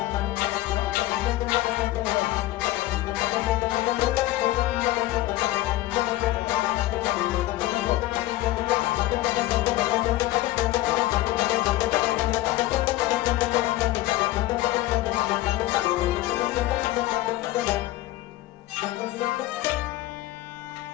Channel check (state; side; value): quieter; right; 16.6 dB